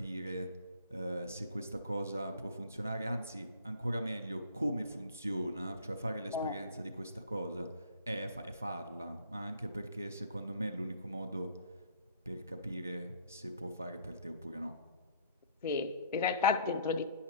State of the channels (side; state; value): both; inverted; correlation -0.54